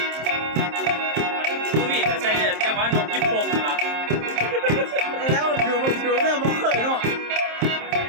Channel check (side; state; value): left; late; 27 ms